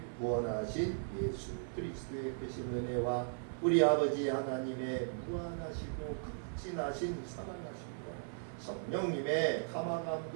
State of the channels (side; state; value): left; silent; digital silence